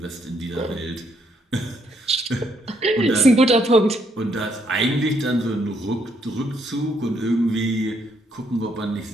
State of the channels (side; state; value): both; normal; correlation 0.72